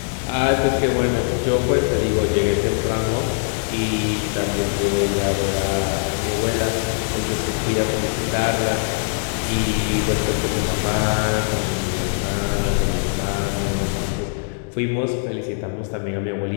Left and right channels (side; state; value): right; silent; digital silence